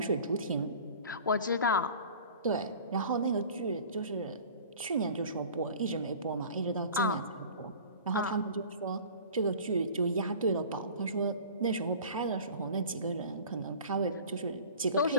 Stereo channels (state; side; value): inverted; both; correlation -0.42